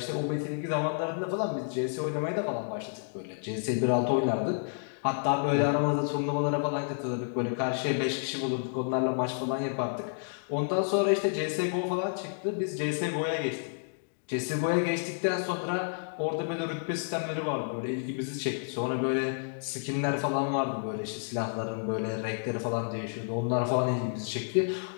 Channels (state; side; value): silent; right; digital silence